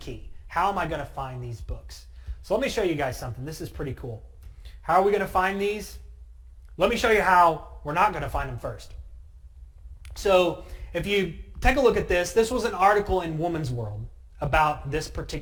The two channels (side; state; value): both; identical; correlation 1.00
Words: How am I going to find these books? So let me show you guys something. This is pretty cool. How are we going to find these? Let me show you how we're not going to find them first. So if you take a look at this, this was an article in Woman's World about this